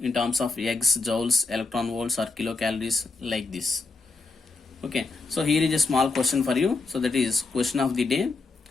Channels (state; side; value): quieter; right; 3.8 dB